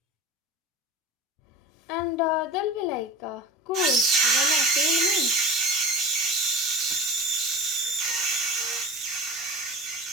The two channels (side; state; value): both; normal; correlation 0.34